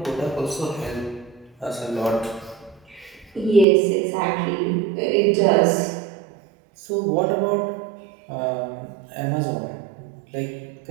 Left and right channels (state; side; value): drops out; left; at 3.7 s